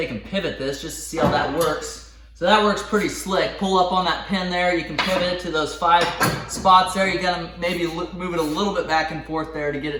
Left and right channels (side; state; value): both; identical; correlation 1.00